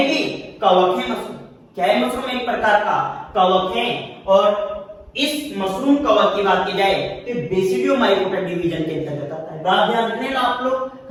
कवक है। मशरूम क्या है, मशरूम एक प्रकार का कवक है। और इस मशरूम कवक की बात की जाए तो बेसिडियोमाइकोटा डिवीजन के अंतर्गत आता है। बात ध्यान रखने ना आप लोग,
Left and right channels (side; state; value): both; identical; correlation 1.00